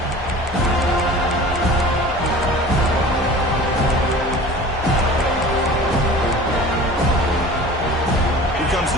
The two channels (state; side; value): normal; both; correlation 0.41